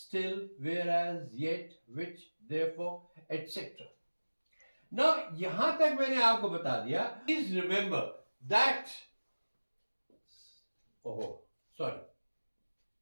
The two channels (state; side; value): inverted; both; correlation -1.00